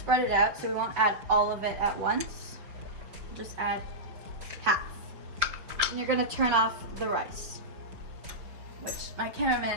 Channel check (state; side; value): late; left; 5.6 ms